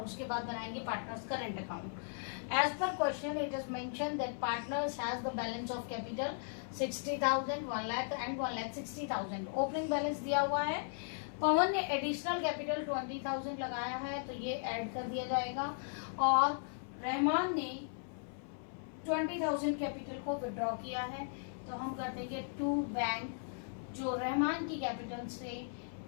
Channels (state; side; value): silent; right; 53 dB below the other